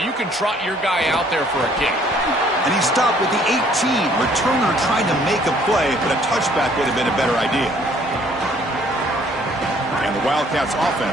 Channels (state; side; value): normal; both; correlation 0.61